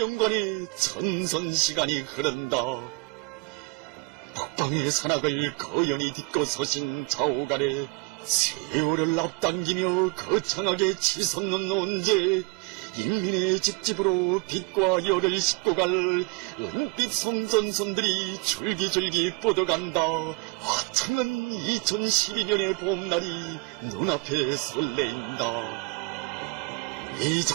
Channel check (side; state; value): left; quieter; 29.7 dB